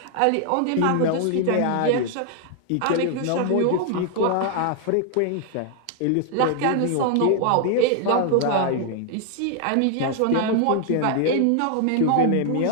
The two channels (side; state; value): both; different; correlation 0.00